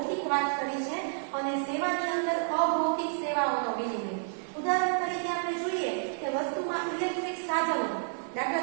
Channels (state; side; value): silent; left; 58 dB below the other